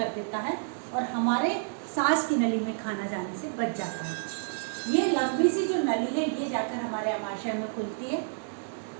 देता है और हमारे सांस की नली में खाना जाने से बच जाता है। ये लंबी सी जो नली है ये जाकर हमारे अमाशय में खुलती है।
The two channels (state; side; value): silent; left; digital silence